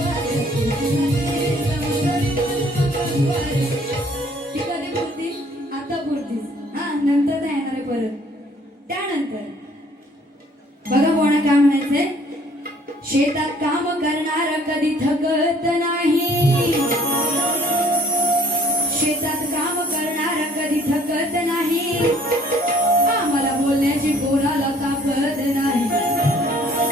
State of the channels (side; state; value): both; normal; correlation 0.59